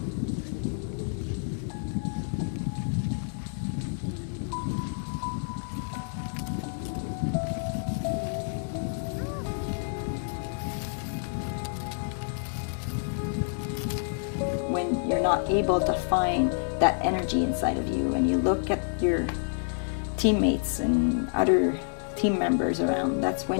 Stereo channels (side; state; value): right; silent; digital silence